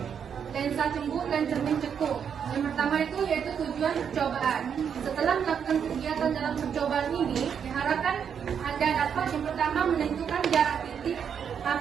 lensa cembung dan cermin cekung. Yang pertama itu yaitu tujuan percobaan. Setelah melakukan kegiatan dalam percobaan ini, diharapkan Anda dapat yang pertama menentukan jarak titik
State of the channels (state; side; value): quieter; left; 7.6 dB